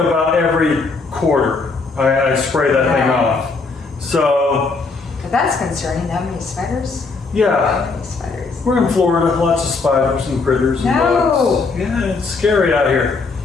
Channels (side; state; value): right; quieter; 4.2 dB